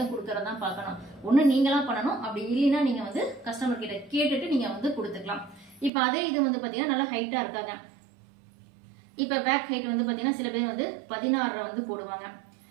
கொடுக்கறதா பார்க்கணும். ஒண்ணு நீங்களா பண்ணணும், அப்படி இல்லைன்னா நீங்க வந்து கஸ்டமர் கிட்ட கேட்டுட்டு நீங்க வந்து கொடுத்துக்கலாம். இப்ப அதே இது வந்து பாத்தீங்கன்னா நல்லா ஹைட்டா இருக்காங்க. இப்ப பேக் ஹைட் வந்து பாத்தீங்கன்னா சில பேர் வந்து 16 வந்து போடுவாங்க,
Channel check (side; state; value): left; drops out; at 5.9 s